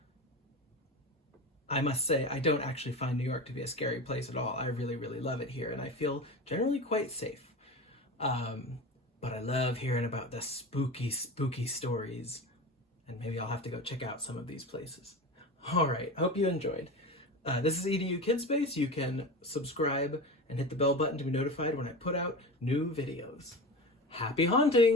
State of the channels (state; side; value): normal; both; correlation 0.28